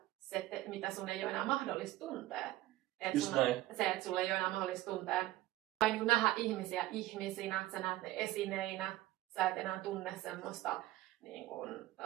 mitä sun ei ole enää mahdollista tuntea. Se, että sulla ei ole enää mahdollista tuntea tai niin kuin nähdä ihmisiä ihmisinä, sä näet ne esineinä, sä et enää tunne semmoista niin kuin,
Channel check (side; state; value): left; quieter; 16.1 dB